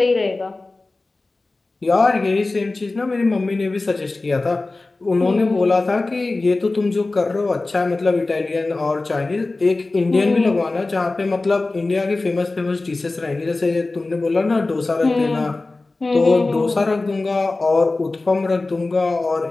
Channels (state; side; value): quieter; right; 3.3 dB